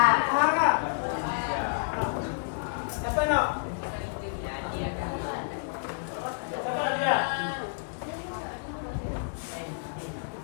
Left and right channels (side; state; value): right; silent; digital silence